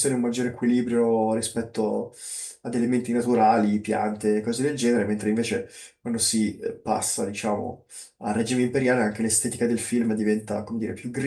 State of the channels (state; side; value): identical; both; correlation 1.00